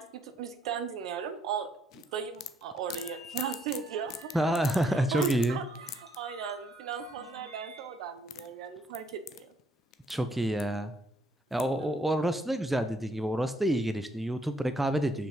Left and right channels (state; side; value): normal; both; correlation 0.69